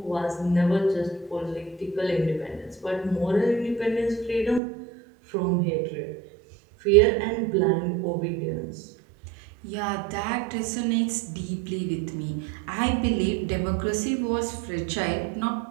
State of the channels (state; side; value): drops out; left; at 4.6 s